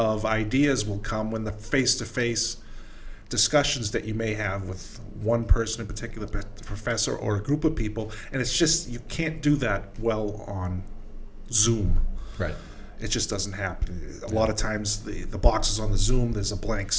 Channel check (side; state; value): both; identical; correlation 1.00